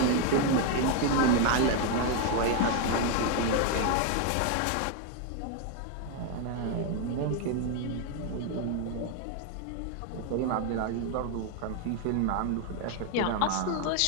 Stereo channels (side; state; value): both; different; correlation 0.01